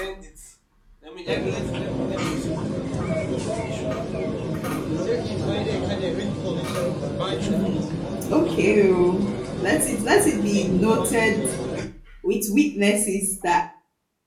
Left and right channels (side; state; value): both; identical; correlation 1.00